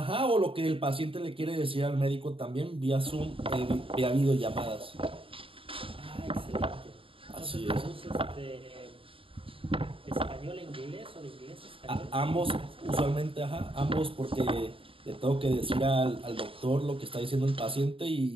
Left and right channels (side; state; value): left; late; 0.26 ms